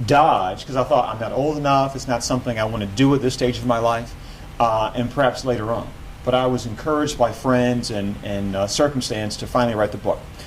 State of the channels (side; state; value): both; identical; correlation 1.00